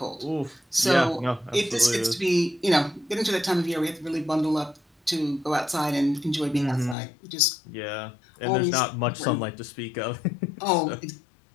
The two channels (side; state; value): right; drops out; at 7.0 s